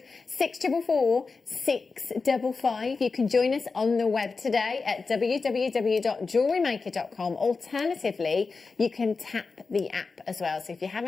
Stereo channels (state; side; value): quieter; right; 4.4 dB